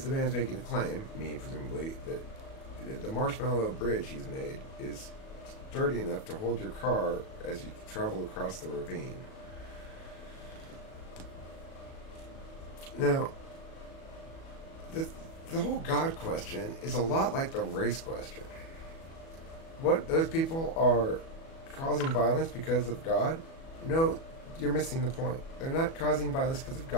man's making a claim, me presumably, that the marshmallow bridge he's made is sturdy enough to hold your car as you travel across the ravine. Now, the whole God question is a lot like the race question. What, those people are causing violence because of God? No, you're missing the point. They're not causing violence because of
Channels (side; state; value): right; late; 37 ms